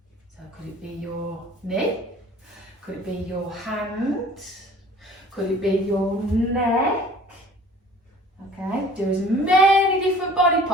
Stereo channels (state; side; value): normal; both; correlation 0.49